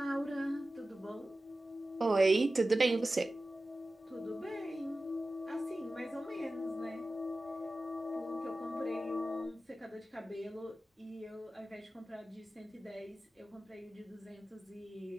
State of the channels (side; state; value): both; normal; correlation 0.95